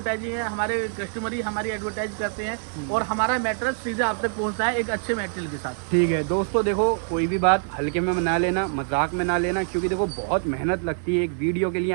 है। हमारे कस्टमर ही हमारी एडवर्टाइज करते हैं और हमारा मैट्रेस सीधा आप तक पहुंचता है एक अच्छे मटेरियल के साथ। ठीक है दोस्तों, देखो कोई भी बात हल्के में ना लेना, मजाक में ना लेना, क्योंकि देखो बहुत मेहनत लगती है एक वीडियो के लिए,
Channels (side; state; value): left; silent; digital silence